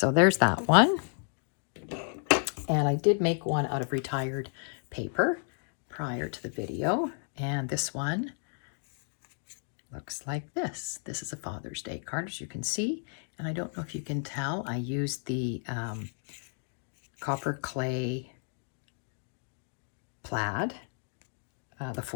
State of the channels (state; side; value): silent; right; 56 dB below the other